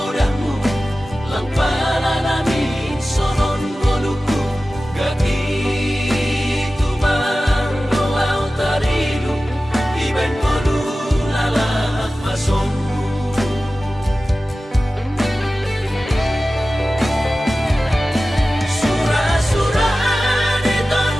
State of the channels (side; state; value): both; normal; correlation 0.95